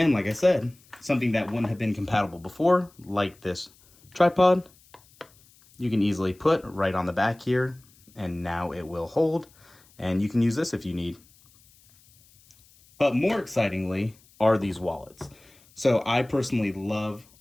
like I said, something that wouldn't have been compatible before, like this tripod, you can easily put right on the back here, and now it will hold, and you can use this if you need. But more excitingly are these wallets. So I personally love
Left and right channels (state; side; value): noise; left; hiss, 29 dB below the sound